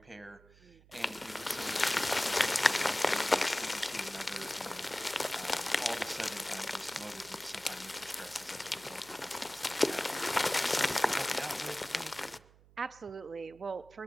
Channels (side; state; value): right; noise; hum, 26 dB below the sound